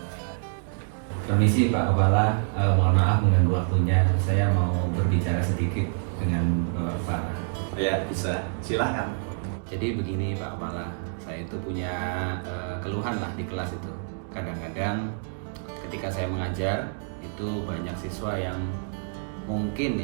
Permisi Pak Kepala, mohon maaf mengganggu waktunya. Saya mau berbicara sedikit dengan Bapak Kepala. Ya, bisa. Silakan. Jadi begini Pak Kepala, saya itu punya keluhan lah di kelas itu. Kadang-kadang ketika saya mengajar, itu banyak siswa yang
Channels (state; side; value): silent; left; digital silence